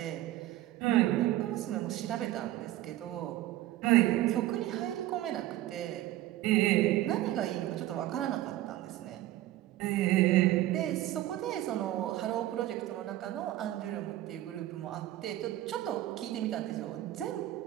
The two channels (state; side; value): quieter; left; 14.9 dB